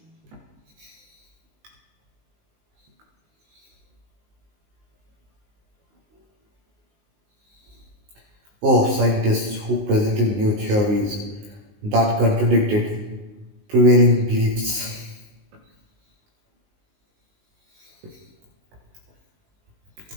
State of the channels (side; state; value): left; late; 19 ms